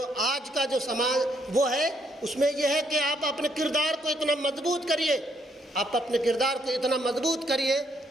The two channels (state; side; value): normal; both; correlation 0.72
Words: آج کا جو سماج وہ ہے اس میں یہ ہے کہ آپ اپنے کردار کو اتنا مضبوط کریے، آپ اپنے کردار کو اتنا مضبوط کریے